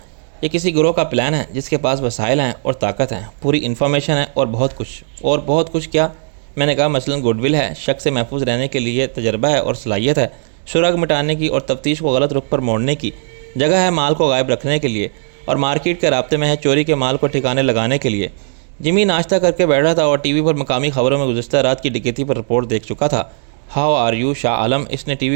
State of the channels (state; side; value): silent; left; digital silence